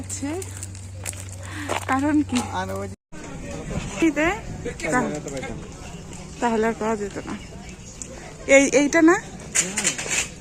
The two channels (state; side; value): identical; both; correlation 1.00